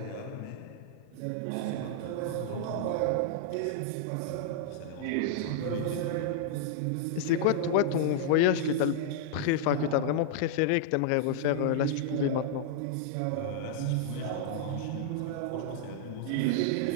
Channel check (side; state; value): both; different; correlation -0.01